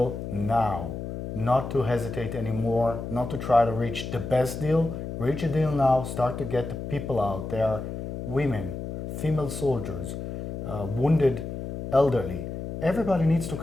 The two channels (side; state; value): left; noise; hum, 7 dB below the sound